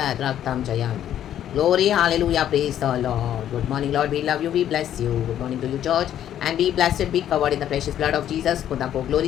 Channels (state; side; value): quieter; right; 10.9 dB